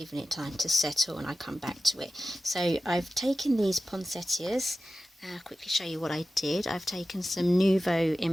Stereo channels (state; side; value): normal; both; correlation 0.94